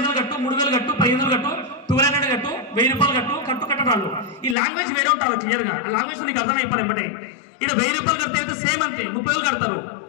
కట్టు, 3,000 కట్టు, 1,500 కట్టు, 1,200 కట్టు, 1,000 రూపాయలు కట్టు కట్టడాలు. ఈ లాంగ్వేజ్ వేరే ఉంటారు క్లియర్ గా. ఆ లాంగ్వేజ్ నీకు అర్థమైపోయి ఎంబటే. ఇక్కడ 1,000 రూపాయలు కడితే అయితే సేమ్ అంతే 30,000 కడతారు.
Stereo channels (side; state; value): right; drops out; at 4.5 s